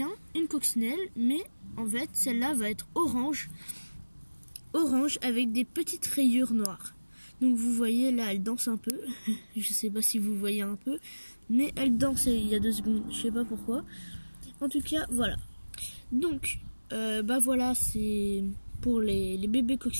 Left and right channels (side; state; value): both; inverted; correlation -1.00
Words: une coccinelle, mais en fait, celle-là va être orange avec des petites rayures noires. Donc vous voyez, là, elle danse un peu. Je sais pas si vous voyez un peu, mais elle danse il y a 2 secondes, je sais pas pourquoi. En tout cas, voilà. Donc, voilà, c'est pour les bébés